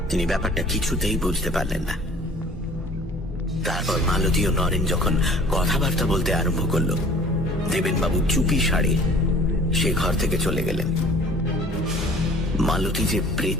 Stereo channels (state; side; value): normal; both; correlation 0.49